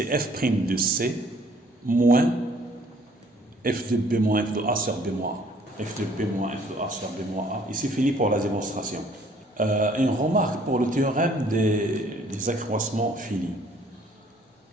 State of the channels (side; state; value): both; normal; correlation 0.59